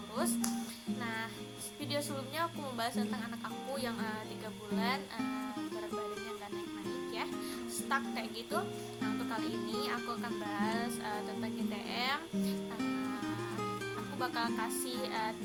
Nah, video sebelumnya aku membahas tentang anak aku yang 3 bulan berat badannya nggak naik-naik ya, stuck kayak gitu. Nah, untuk kali ini aku akan bahas tentang GTM. Aku bakal kasih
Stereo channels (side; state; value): both; identical; correlation 1.00